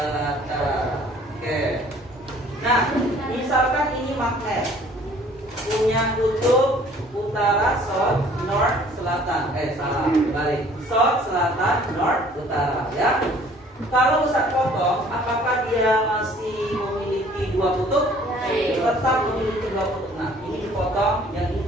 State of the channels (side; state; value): both; normal; correlation 0.55